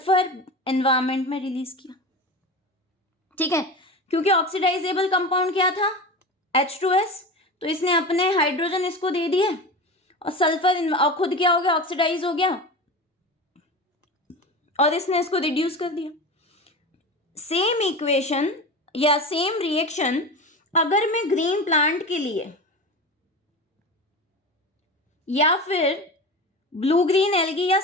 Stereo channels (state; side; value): normal; both; correlation 0.29